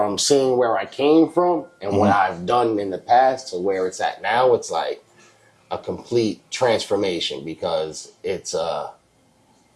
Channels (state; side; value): identical; both; correlation 1.00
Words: seeing where I came from and what I've done in the past to where it's at now, it's like a complete transformation, because it's